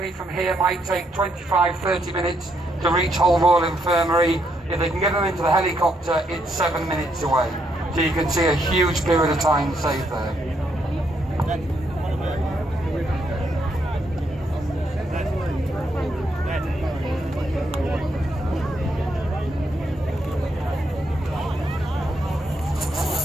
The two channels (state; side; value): normal; both; correlation 0.76